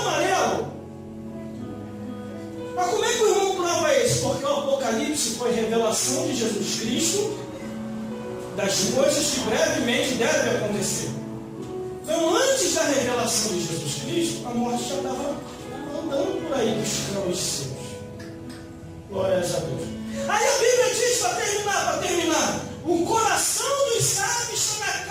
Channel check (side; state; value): both; identical; correlation 1.00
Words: amarelo. Mas como é que o irmão prova isso? Porque o Apocalipse foi revelação de Jesus Cristo das coisas que brevemente devem acontecer. Então, antes da revelação de Jesus Cristo, a morte já estava andando por aí buscando os seus. Glórias a Deus. Aí a Bíblia diz, para terminar, o coração dos sábios está na